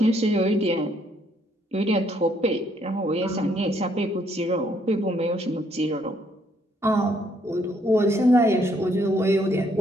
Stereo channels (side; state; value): both; normal; correlation 0.69